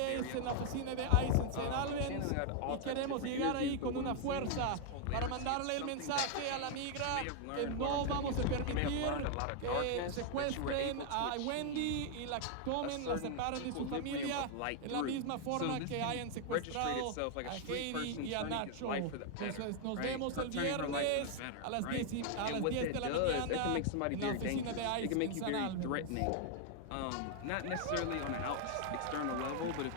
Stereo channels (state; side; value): different; both; correlation 0.00